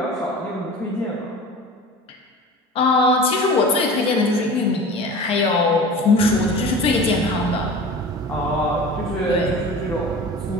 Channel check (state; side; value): normal; both; correlation 0.37